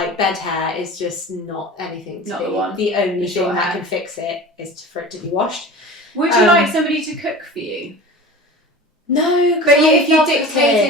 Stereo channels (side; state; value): both; normal; correlation 0.36